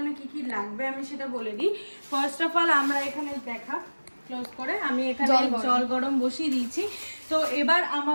কি কি লাগবে আমি সেটা বলে দিই। ফার্স্ট অফ অল আমরা এখানে ক্লোজ করে আমি এখানে জল গরম বসিয়ে দিয়েছি। তো এবার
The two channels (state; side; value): inverted; both; correlation -1.00